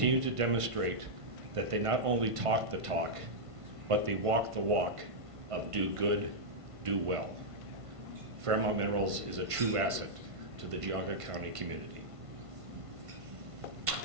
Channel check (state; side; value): late; left; 1.5 ms